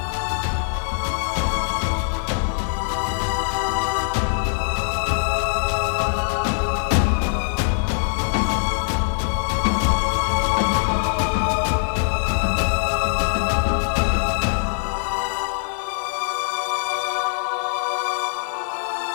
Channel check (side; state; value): right; silent; 64 dB below the other